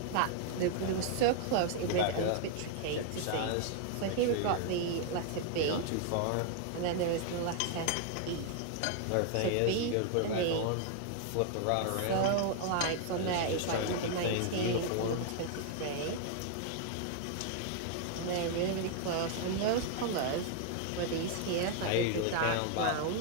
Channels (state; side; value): different; both; correlation 0.00